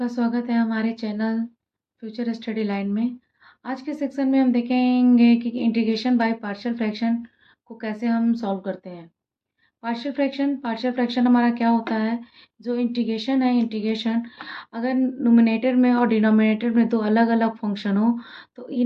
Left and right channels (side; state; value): both; identical; correlation 1.00